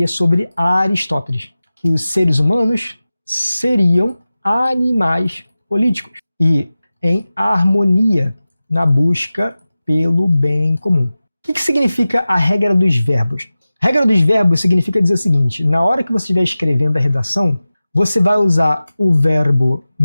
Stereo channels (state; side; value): inverted; both; correlation -0.96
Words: sobre Aristóteles, que os seres humanos seriam animais políticos e em harmonia na busca pelo bem comum. O que significa a regra dos verbos? A regra dos verbos significa dizer o seguinte: na hora que você estiver escrevendo a redação, você vai usar o verbo